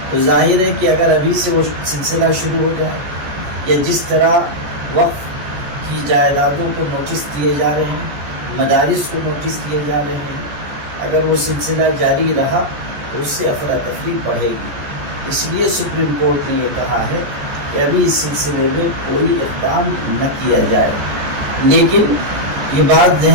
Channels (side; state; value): left; late; 14 ms